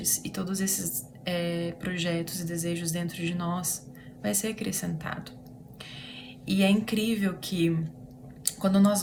e todos esses projetos e desejos dentro de nós vai ser acrescentado. E é incrível que quando nós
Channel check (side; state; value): both; identical; correlation 1.00